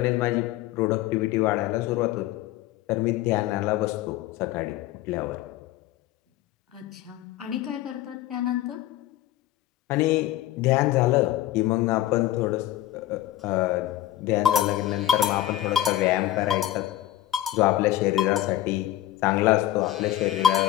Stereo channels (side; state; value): right; quieter; 14.0 dB